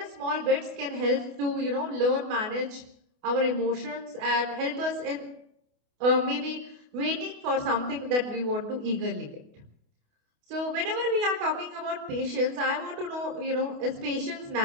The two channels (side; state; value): left; late; 28 ms